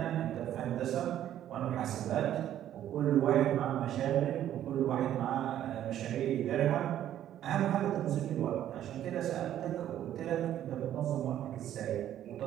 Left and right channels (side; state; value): left; quieter; 11.5 dB